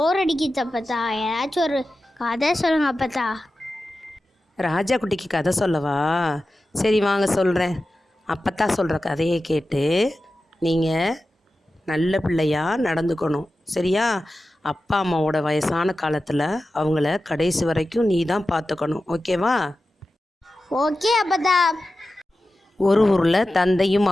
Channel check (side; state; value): both; normal; correlation 0.93